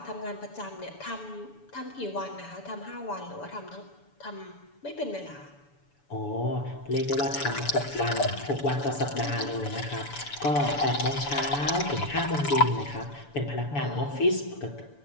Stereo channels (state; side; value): late; right; 7.0 ms